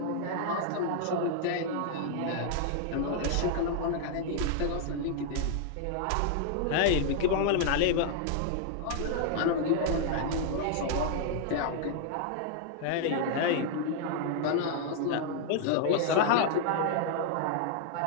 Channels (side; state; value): both; different; correlation -0.01